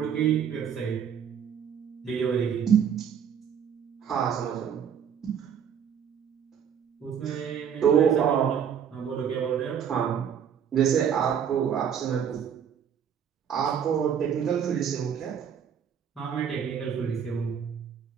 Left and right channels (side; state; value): left; quieter; 8.1 dB